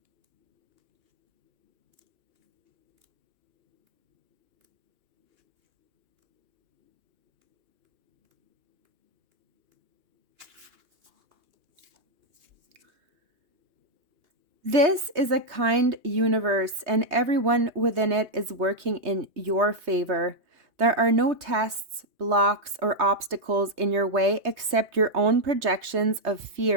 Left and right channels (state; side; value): late; left; 3.2 ms